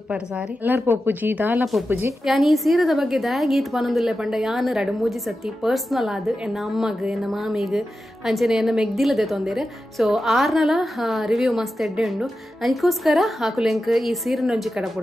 ಪರ್ ಸಾರಿ ಎಲ್ಲರ ಪೋಪುಜಿ ದಾಲ ಪೋಪುಜಿ ಯಾನ್ ಈ ಸೀರೆದ ಬಗ್ಗೆ ಗೀತ್ ಪನೊಂದುಲ್ಲೆ ಪಂಡ ಯಾನ್ 2-3 ಸತಿ ಪರ್ಸನಲ್ ಆದ್ ಎನ್ನ ಅಮ್ಮಗ್ ಎನ್ನ ಮಾಮಿಗ್ ಅಂಚನೆ ಎನ್ನ ಮೆಗ್ದಿಲದೆ ತೊಂದೇರೆ ಸೊ ಆರ್ನಲ ರಿವ್ಯೂ ಮಸ್ತ್ ಎಡ್ಡೆ ಉಂಡು ಅದಕ್ಕೋಸ್ಕರ ಆಕುಲೆಂಕ್ ಈ ಸೀರೆನ ಒಂಜಿ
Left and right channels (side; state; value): both; normal; correlation 0.91